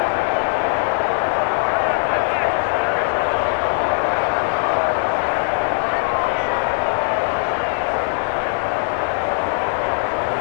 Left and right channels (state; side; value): silent; right; 66 dB below the other